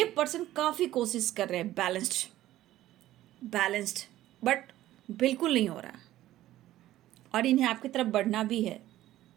पर्सन काफ़ी कोशिश कर रहे हैं बैलेंस्ड, बट बिल्कुल नहीं हो रहा और इन्हें आपकी तरफ बढ़ना भी है।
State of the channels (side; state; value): left; quieter; 14.4 dB